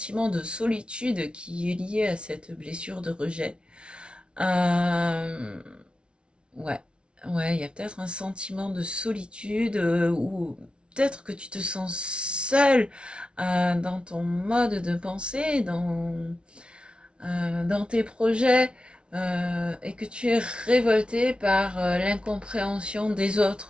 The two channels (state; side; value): late; left; 0.058 ms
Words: de solitude qui est lié à cette blessure de rejet. Ouais, ouais, il y a peut-être un sentiment de solitude, ou peut-être que tu te sens seul dans ton mode de pensée, dans tes projets, et que tu es révolté par l'incompréhension des